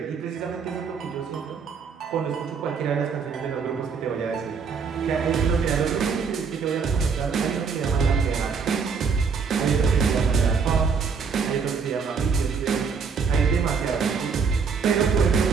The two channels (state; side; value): quieter; left; 5.7 dB